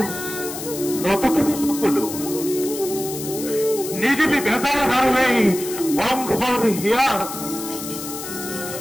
নতকে সকলো পৃথিৱী বেজাৰ আৰু এই বংশৰ হিয়াৰ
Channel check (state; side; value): noise; left; hiss, 9 dB below the sound